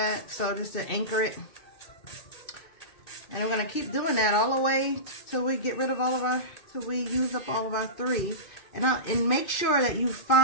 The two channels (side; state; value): right; late; 2.5 ms